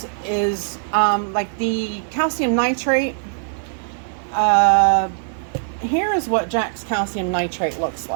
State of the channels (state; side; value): silent; left; digital silence